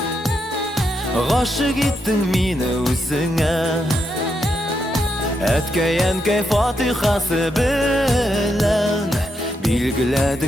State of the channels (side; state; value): both; normal; correlation 0.81